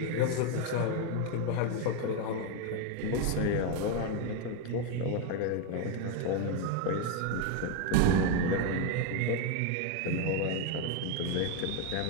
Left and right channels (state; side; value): different; both; correlation 0.01